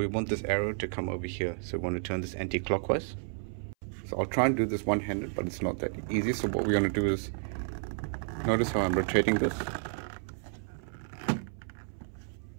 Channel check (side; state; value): left; silent; 57 dB below the other